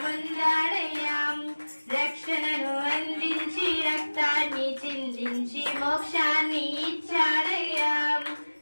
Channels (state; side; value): inverted; both; correlation -1.00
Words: రక్షణను అందించి రక్తాన్ని చిందించి మోక్షాన్ని ఇచ్చాడయ్యా.